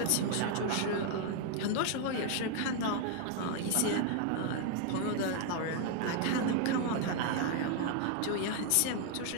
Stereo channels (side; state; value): both; different; correlation 0.00